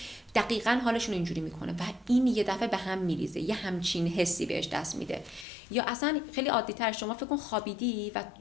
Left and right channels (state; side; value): drops out; right; at 5.5 s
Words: دقیقاً حالشون اینجوری میکنه و این یه دفعه به هم میریزه، یه همچین حسی بهش دست میده. یا اصلا خیلی عادی تر، شما فکر کن خوابیدی و